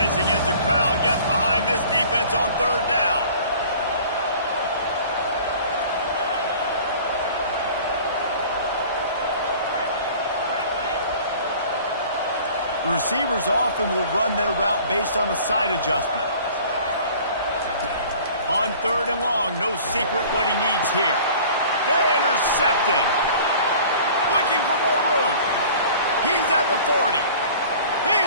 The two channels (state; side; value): inverted; both; correlation -0.47